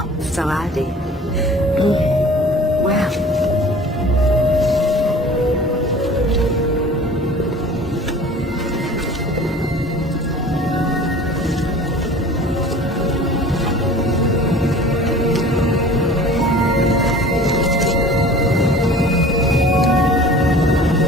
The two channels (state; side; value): normal; both; correlation 0.44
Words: so I did. Well,